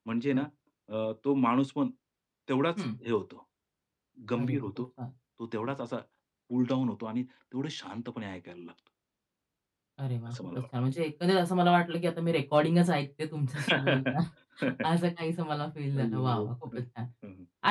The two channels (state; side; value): identical; both; correlation 1.00